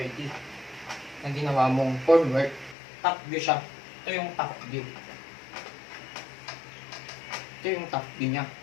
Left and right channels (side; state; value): right; drops out; at 2.8 s